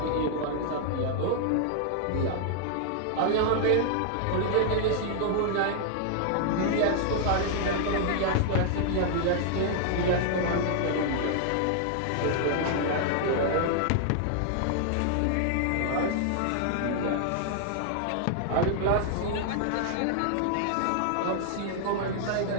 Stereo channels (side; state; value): both; different; correlation -0.01